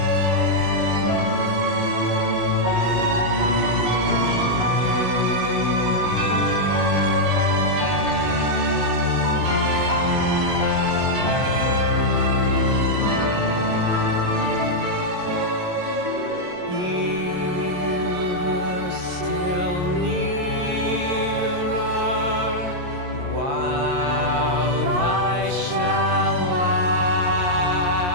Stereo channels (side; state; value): left; late; 22 ms